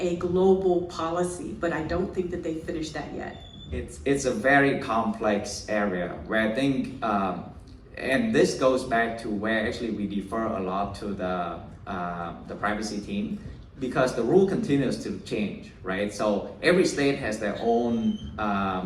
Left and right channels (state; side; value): identical; both; correlation 1.00